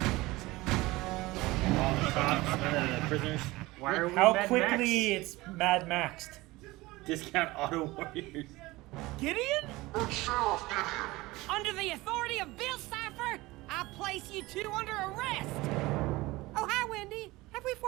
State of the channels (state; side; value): quieter; left; 20.3 dB